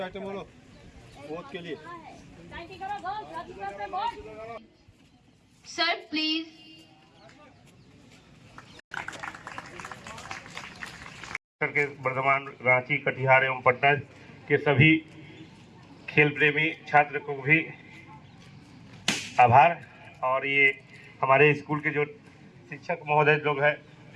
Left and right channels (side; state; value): both; identical; correlation 1.00